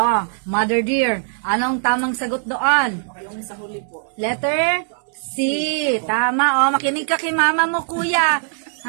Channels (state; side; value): silent; left; digital silence